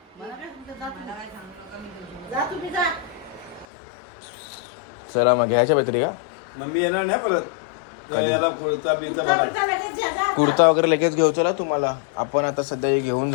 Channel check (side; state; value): right; drops out; at 3.7 s